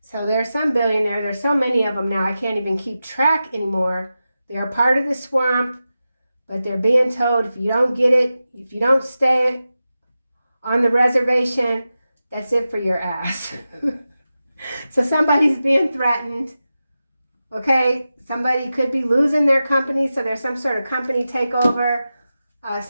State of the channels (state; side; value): inverted; both; correlation -0.93